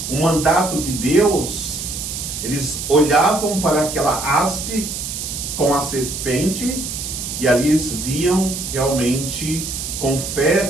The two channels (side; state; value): right; noise; hiss, 6 dB below the sound